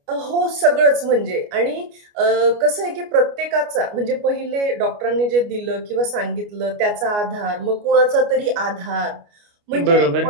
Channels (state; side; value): late; left; 29 ms